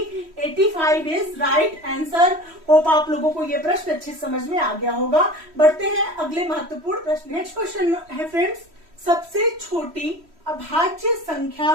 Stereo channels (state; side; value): late; left; 3.1 ms